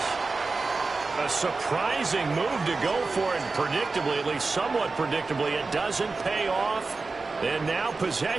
A surprising move to go for it, predictably, at least somewhat predictably, it doesn't pay off. And now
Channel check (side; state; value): left; quieter; 3.9 dB